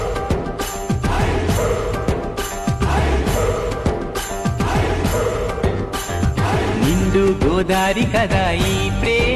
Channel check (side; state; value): both; identical; correlation 1.00